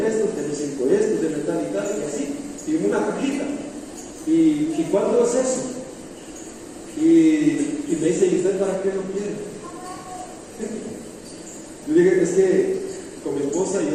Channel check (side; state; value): both; identical; correlation 1.00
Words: estos, déjeme 5 de estos, déjeme tal y tal, y así, y en una cajita. ¿Y cuánto es eso? Y me dice, ¿y usted para qué lo quiere? Yo dije, es que con mi esposa y